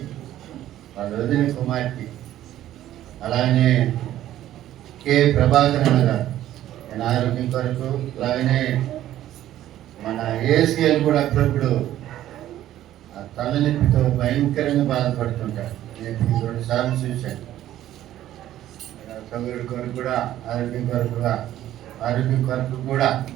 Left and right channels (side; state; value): left; quieter; 13.0 dB